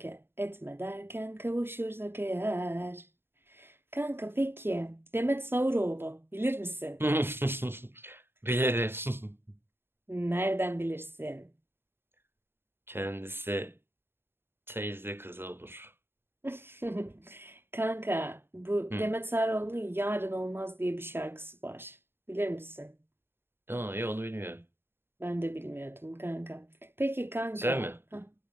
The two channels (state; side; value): late; left; 0.11 ms